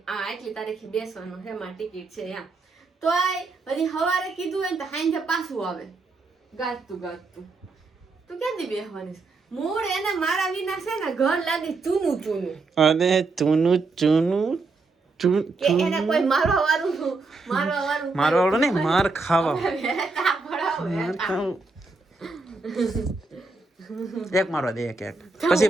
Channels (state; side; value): quieter; left; 3.8 dB